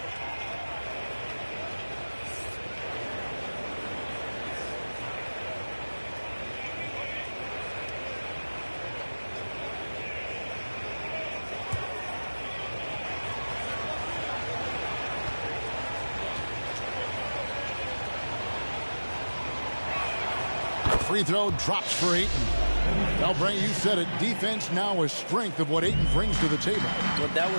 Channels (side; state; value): both; inverted; correlation -1.00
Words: Free throw drops for Ayton. Now, Brent, you said it. Defense now a strength of what Ayton brings to the table. Well, that